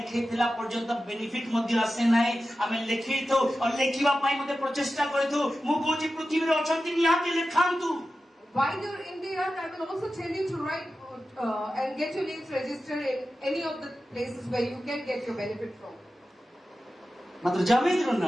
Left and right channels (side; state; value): both; normal; correlation 0.93